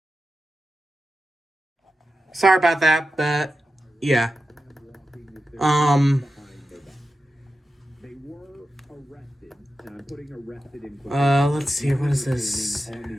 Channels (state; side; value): normal; both; correlation 0.91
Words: Sorry about that, but yeah. They were arrested. And I'm putting arrested in quotes. Let's see, what is this? On